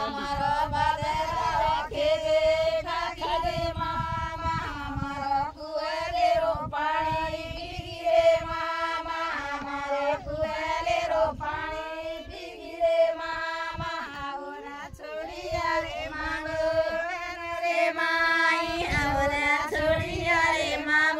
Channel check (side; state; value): both; identical; correlation 1.00